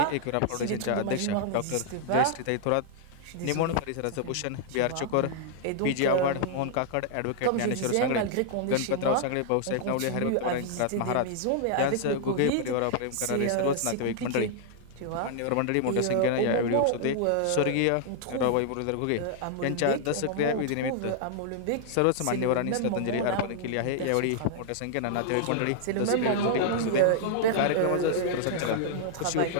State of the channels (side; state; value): both; different; correlation -0.01